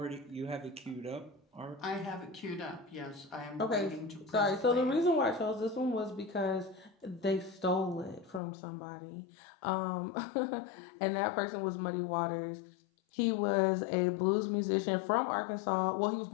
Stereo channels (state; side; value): drops out; right; at 8.4 s